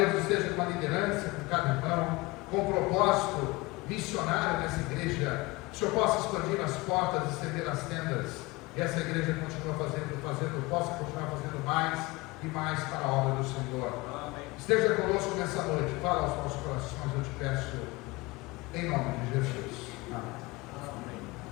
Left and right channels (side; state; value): right; quieter; 22.9 dB